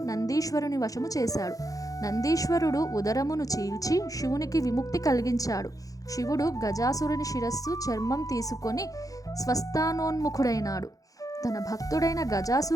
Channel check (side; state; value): right; late; 0.17 ms